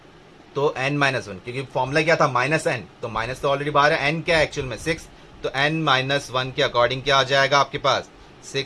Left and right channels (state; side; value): identical; both; correlation 1.00